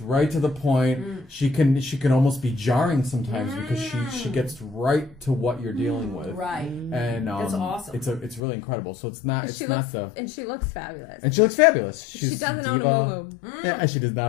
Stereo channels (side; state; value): right; drops out; at 8.4 s